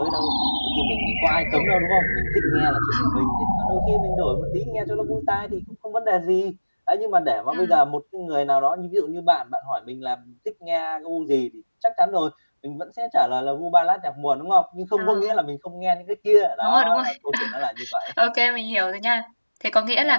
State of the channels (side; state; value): both; inverted; correlation -1.00